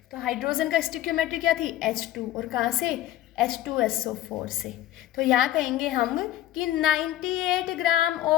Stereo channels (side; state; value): right; quieter; 13.6 dB